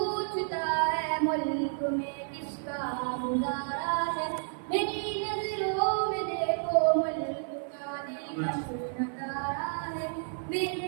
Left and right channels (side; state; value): left; silent; digital silence